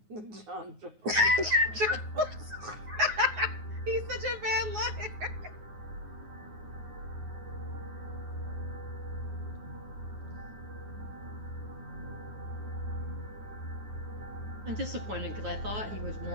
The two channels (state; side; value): late; left; 9.5 ms